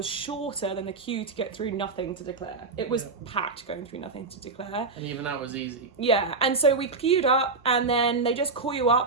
shorter than the queue to get through nothing to declare. It was packed going through nothing to declare. And even that was easy. Yeah, and so we queued up, and then they just call you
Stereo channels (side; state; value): left; quieter; 4.0 dB